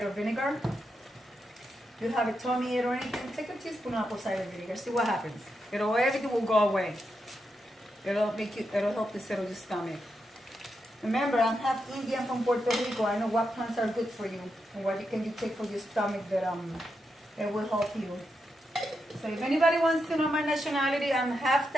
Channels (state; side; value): normal; both; correlation 0.85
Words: vinegar. If you have a tummy ache or anything, take a teaspoon of apple cider vinegar. See what happens. Everything will go away. It'll help to settle your stomach. Remember, I'm half Indian from Puerto Rico. I know what plants are good for you and what can you take for your stomach that it will help you. So if anybody wants to know my nationality, I'm half